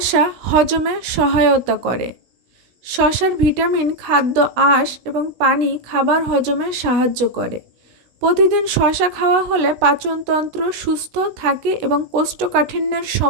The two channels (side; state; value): left; late; 16 ms